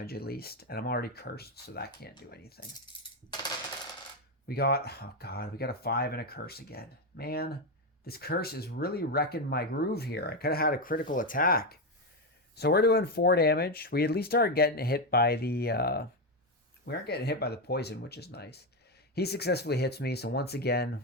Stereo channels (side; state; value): both; normal; correlation 0.08